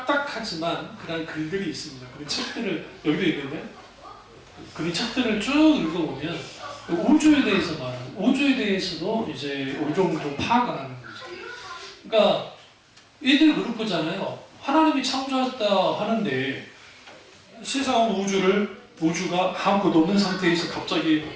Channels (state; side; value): identical; both; correlation 1.00